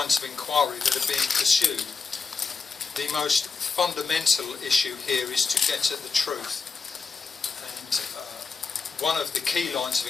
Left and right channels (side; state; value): right; quieter; 5.1 dB